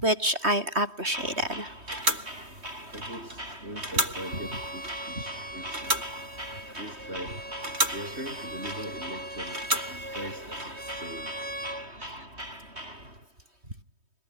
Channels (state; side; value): late; left; 3.2 ms